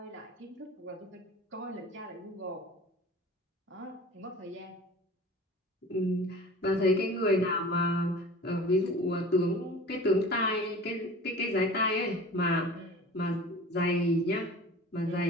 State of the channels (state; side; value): normal; both; correlation 0.40